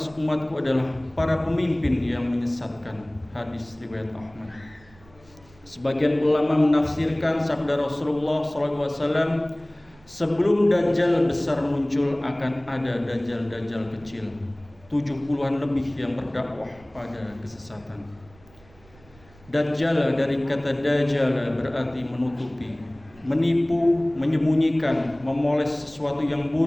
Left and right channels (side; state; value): right; noise; rumble, 26 dB below the sound